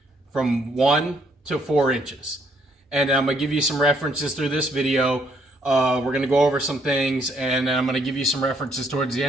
from 1 to 4 inches. And I'm gonna give you some references through this video. We're gonna go over some things, and I'm gonna give you some references towards the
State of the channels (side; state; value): both; normal; correlation 0.69